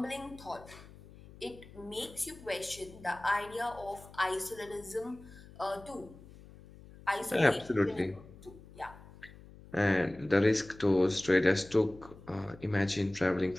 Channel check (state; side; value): noise; left; hum, 20 dB below the sound